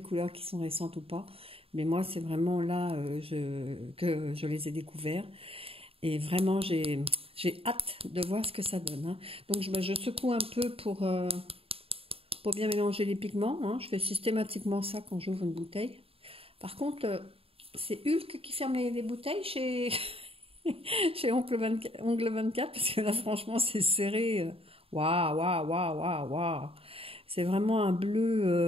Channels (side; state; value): left; late; 0.27 ms